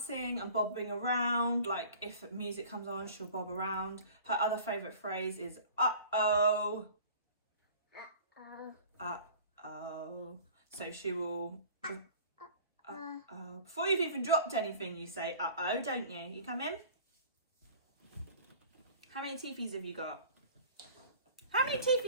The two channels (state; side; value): inverted; both; correlation -0.46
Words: and bobbing around. Like if music comes on, she'll bob around. Her other favourite phrase is uh-oh. Uh-oh. So she will uh-oh. Before you've even dropped anything, you say uh-oh, don't you? You come in. How many teepees have you got? How many